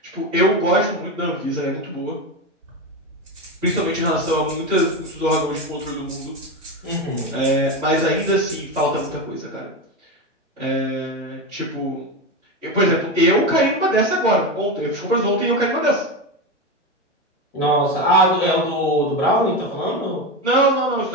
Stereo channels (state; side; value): normal; both; correlation 0.17